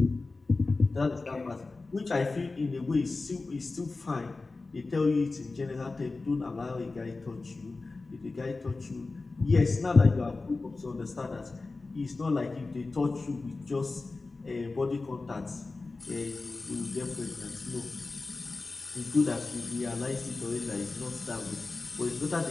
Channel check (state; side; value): quieter; right; 3.6 dB